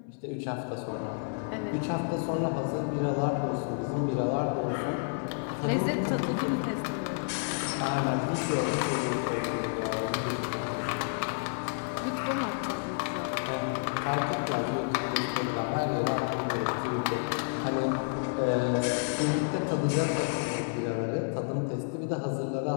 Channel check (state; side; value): silent; right; 58 dB below the other